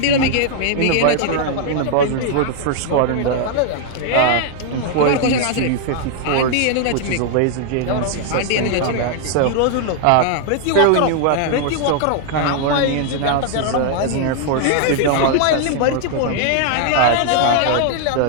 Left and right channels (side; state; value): both; different; correlation 0.00